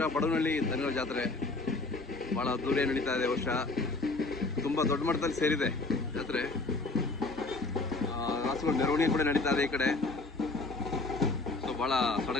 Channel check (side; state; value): right; quieter; 3.3 dB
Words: ಬಡವನಹಳ್ಳಿ ದನಗಳ ಜಾತ್ರೆ. ಭಾಳ ಅದ್ದೂರಿಯಾಗಿ ನಡೀತಾ ಇದೆ. ವರ್ಷ ತುಂಬ ದೊಡ್ಡ ಮಟ್ಟದಲ್ಲಿ ಸೇರಿದೆ ಜಾತ್ರೆ. ರಾಸುಗಳ ಮೆರವಣಿಗೆ ಕೂಡ ನಡೀತಾ ಇದೆ ಈ ಕಡೆ. ಸೊ ಭಾಳ